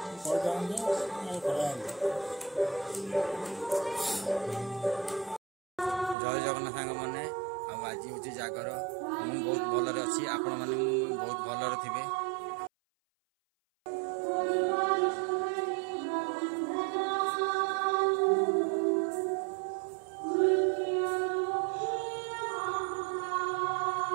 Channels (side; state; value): left; drops out; at 6.2 s